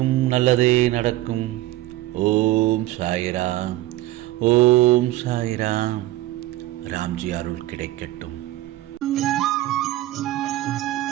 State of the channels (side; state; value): left; quieter; 16.4 dB